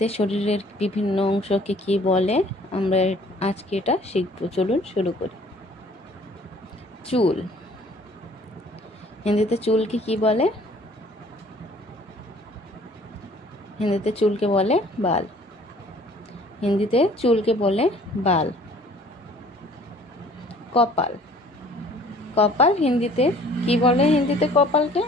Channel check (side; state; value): both; normal; correlation 0.54